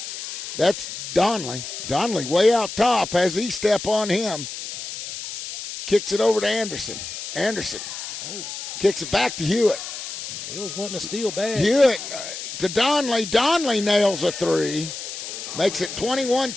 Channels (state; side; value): noise; left; hiss, 8 dB below the sound